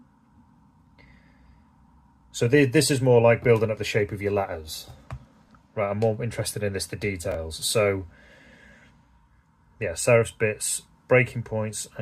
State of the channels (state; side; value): identical; both; correlation 1.00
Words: this is more like building up the shape of your letters. Right, I'm more interested in the details. So, yeah, serifs, bits, breaking points,